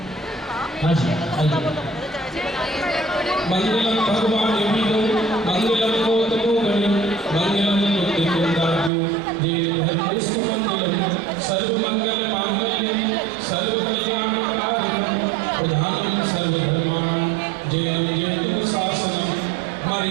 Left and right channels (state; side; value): drops out; left; at 8.9 s